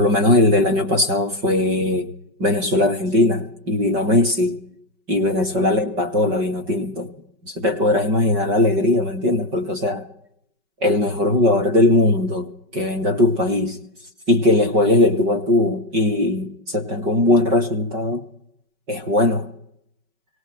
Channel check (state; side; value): late; left; 5.3 ms